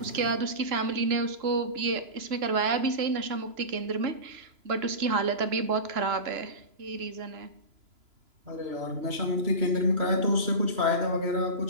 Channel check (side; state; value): left; late; 2.9 ms